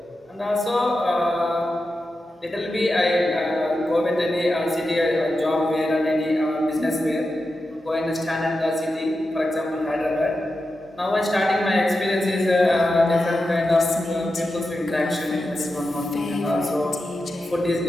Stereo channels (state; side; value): normal; both; correlation 0.90